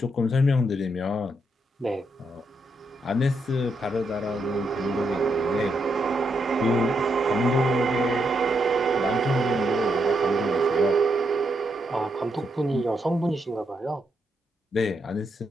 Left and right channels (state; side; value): normal; both; correlation 0.80